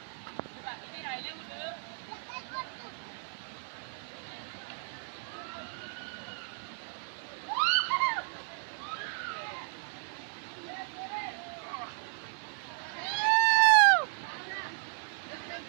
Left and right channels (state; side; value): silent; left; 55 dB below the other